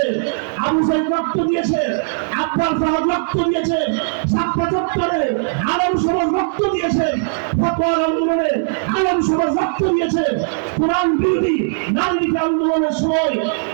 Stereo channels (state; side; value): silent; left; digital silence